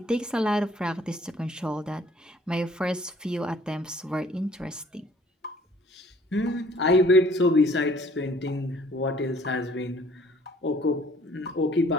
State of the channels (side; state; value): both; normal; correlation 0.57